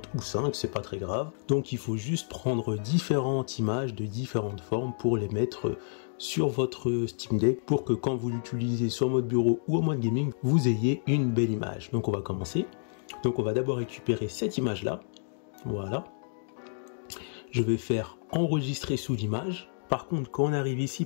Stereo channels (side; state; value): right; silent; digital silence